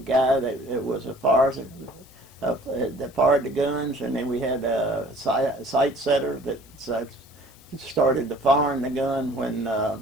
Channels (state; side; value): noise; left; hiss, 27 dB below the sound